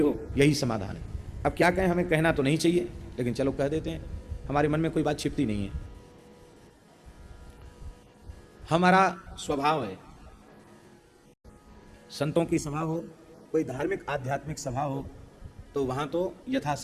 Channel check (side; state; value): both; identical; correlation 1.00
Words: यही समाधान है। अब क्या कहें, हमें कहना तो नहीं चाहिए, लेकिन चलो कह देते हैं, हमारे मन में कोई बात छिपती नहीं है। हमारा स्वभाव है, संतों की सभा हो, कोई धार्मिक आध्यात्मिक सभा हो, तो वहां तो